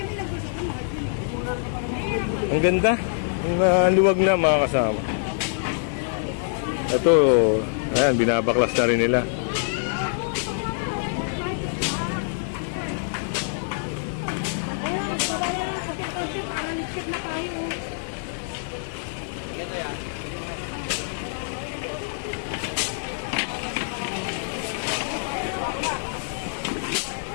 Ang ganda, ang luwag na mga kasama. Ito, ayan, binabaklas na rin nila.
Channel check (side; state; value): right; silent; digital silence